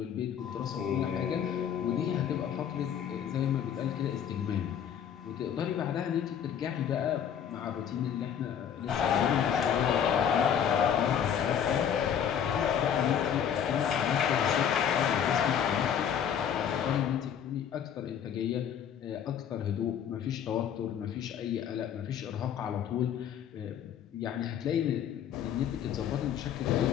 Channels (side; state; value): right; quieter; 8.7 dB